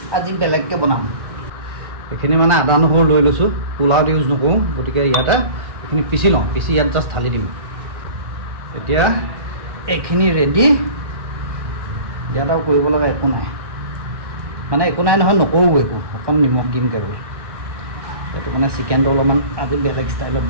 আজি বেলেগকৈ বনাম। এইখিনি মানে আদা নহৰু লৈ লৈছোঁ, পোলাওত ইউজ নকৰোঁ, গতিকে ইয়াতে এইখিনি পিচি লওঁ, পিচি ইয়াত জাষ্ট ঢালি দিম। এতিয়া এইখিনি ৰেডি। ইয়াত আৰু কৰিব লগা একো নাই, মানে একো নাই নহয়, নকৰোঁ একো, অকণ নিমখ দিম কেৱল। সেইটো মানে চিকেনটো অলপমান আজি বেলেগ ষ্টাইলত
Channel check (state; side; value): late; left; 1.6 ms